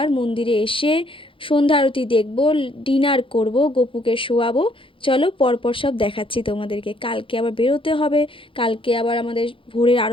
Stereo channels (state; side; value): late; right; 0.25 ms